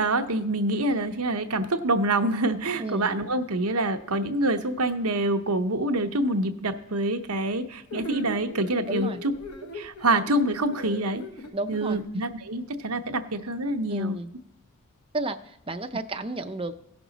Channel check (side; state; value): both; normal; correlation 0.10